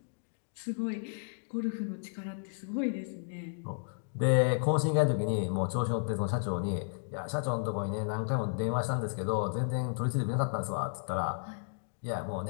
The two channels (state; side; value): silent; right; digital silence